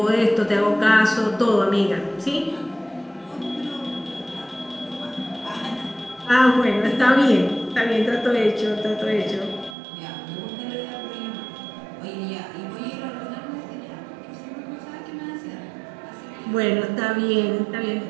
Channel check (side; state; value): left; drops out; at 9.8 s